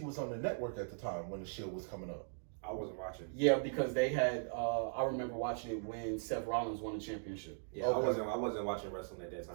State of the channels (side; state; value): left; silent; digital silence